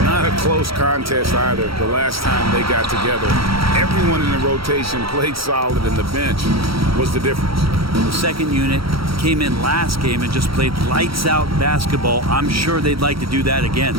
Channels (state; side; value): late; left; 0.75 ms